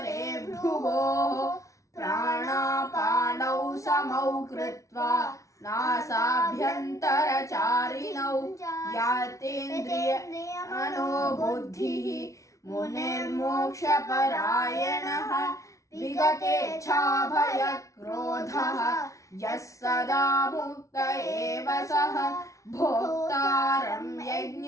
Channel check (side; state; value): right; late; 0.15 ms